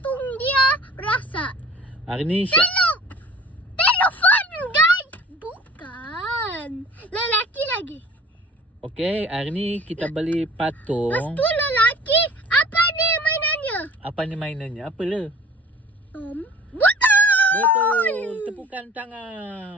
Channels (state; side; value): normal; both; correlation 0.46